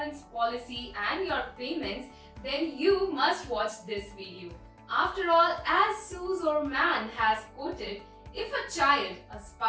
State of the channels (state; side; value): identical; both; correlation 1.00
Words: policy and your payments, then you must watch this video. After all, as Suze or Man has quoted, if a child, a